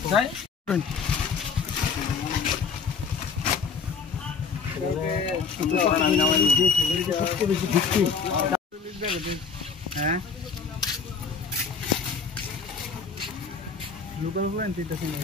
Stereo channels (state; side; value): quieter; right; 5.5 dB